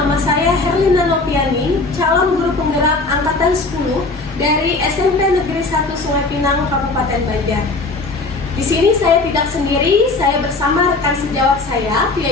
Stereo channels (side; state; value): right; quieter; 3.4 dB